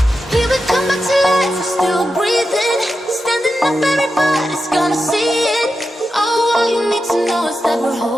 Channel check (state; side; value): normal; both; correlation 0.90